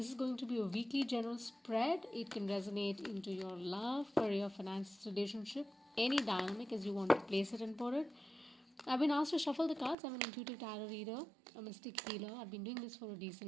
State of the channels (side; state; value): left; drops out; at 10.0 s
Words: is going to be a weekly general spread. It can resonate into your love, career, finances, relationship, any dynamic as you want to place it and put it. I've been asked to shuffle the cards. I'm an intuitive tarot reader, a mystic healer. I've been doing this for a